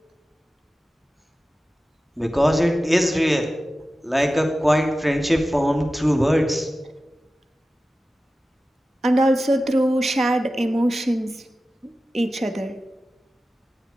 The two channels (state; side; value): normal; both; correlation 0.94